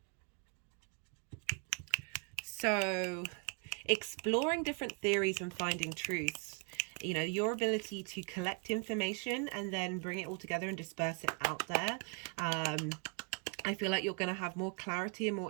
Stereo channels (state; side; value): quieter; left; 34.5 dB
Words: So exploring different theories and finding truths, you know, your ability to collect information and then bring it all together and disperse it out there. I feel like you're going to have more clarity and more